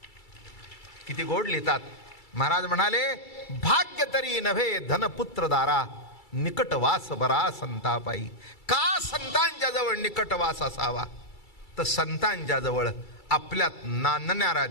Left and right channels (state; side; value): late; right; 2.3 ms